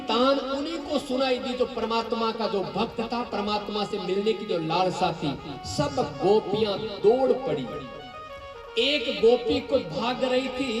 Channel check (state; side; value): identical; both; correlation 1.00